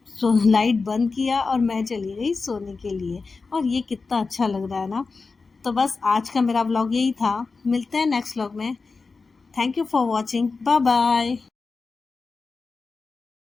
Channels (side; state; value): right; quieter; 4.3 dB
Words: लाइट बंद किया और मैं चली गई सोने के लिए। और ये कितना अच्छा लग रहा है ना। तो बस आज का मेरा व्लॉग यही था। मिलते हैं नेक्स्ट व्लॉग में। Thank you for watching. Bye bye.